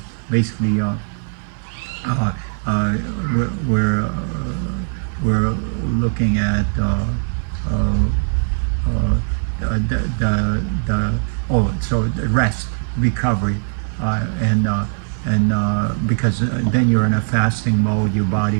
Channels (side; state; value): left; silent; digital silence